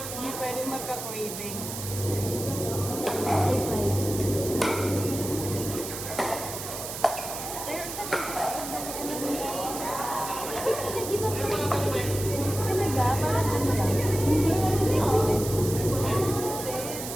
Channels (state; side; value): noise; right; hiss, 7 dB below the sound